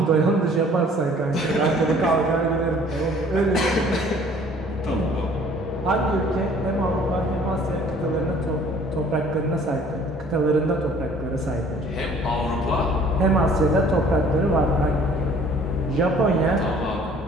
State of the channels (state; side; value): normal; both; correlation 0.54